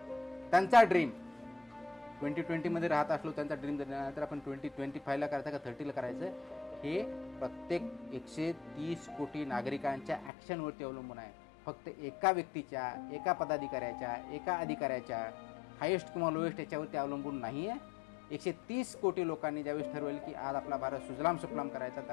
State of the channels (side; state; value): right; drops out; at 10.3 s